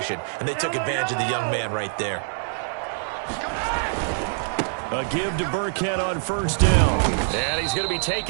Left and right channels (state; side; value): silent; left; digital silence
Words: and they took advantage of the young man right there. A give to Burkhead on first down. And he's going to be